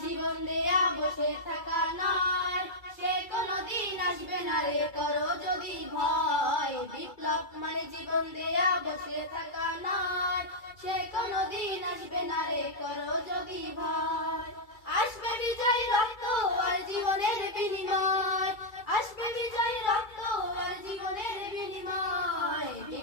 জীবন দেয়া বসে থাকা নয়, সে কোনদিন আসবে না রে করো যদি ভয়। বিপ্লব মানে জীবন দেয়া বসে থাকা নয়, সে কোনদিন আসবে না রে করো যদি ভয়। আসবে বিজয় রক্ত আর জীবনের বিনিময়, আসবে বিজয় রক্ত আর জীবনের বিনিময়।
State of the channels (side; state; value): right; late; 2.3 ms